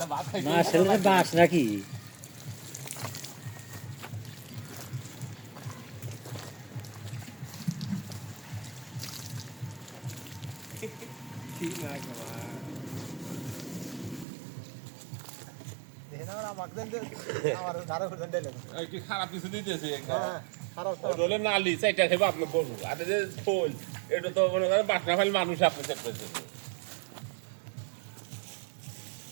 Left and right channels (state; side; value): drops out; left; at 14.2 s